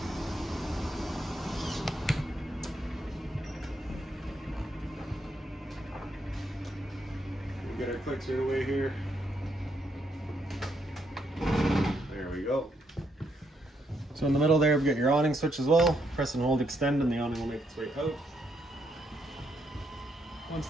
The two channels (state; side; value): normal; both; correlation 0.76